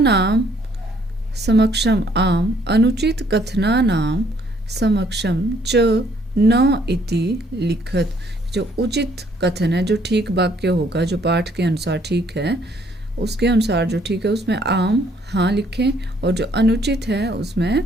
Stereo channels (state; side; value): normal; both; correlation 0.64